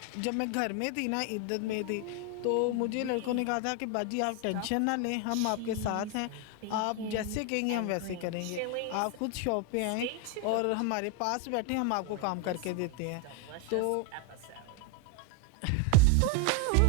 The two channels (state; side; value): different; both; correlation 0.01